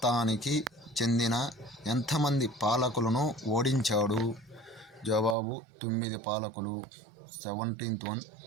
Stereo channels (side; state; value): left; drops out; at 5.4 s